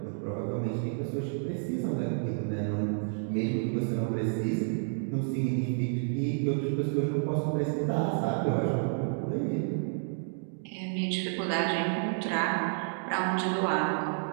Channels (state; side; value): silent; left; digital silence